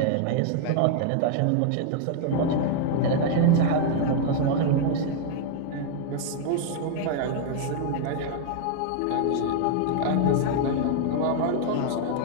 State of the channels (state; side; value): different; both; correlation 0.00